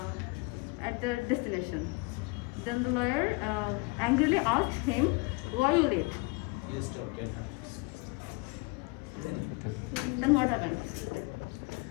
at the destination. Then the lawyer angrily asked him, "Why are you late?" Then what happened?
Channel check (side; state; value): right; quieter; 27.7 dB